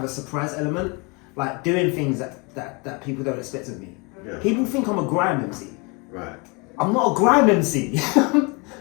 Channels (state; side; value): quieter; right; 29.2 dB